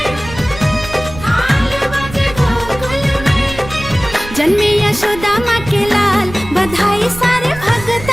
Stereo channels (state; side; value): noise; right; rumble, 13 dB below the sound